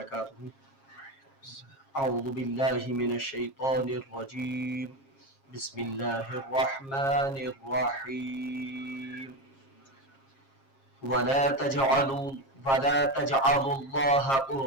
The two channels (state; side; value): late; right; 7.4 ms